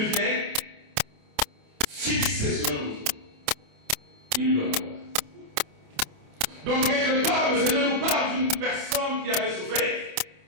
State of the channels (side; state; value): left; late; 28 ms